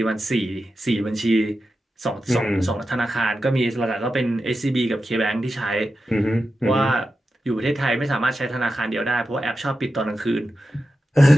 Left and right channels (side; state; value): both; normal; correlation 0.91